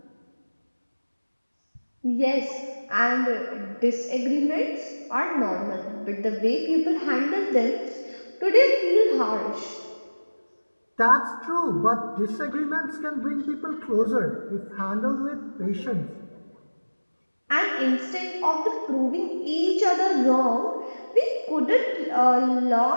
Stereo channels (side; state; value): both; inverted; correlation -1.00